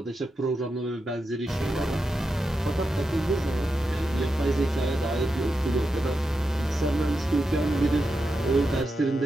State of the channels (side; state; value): both; normal; correlation 0.88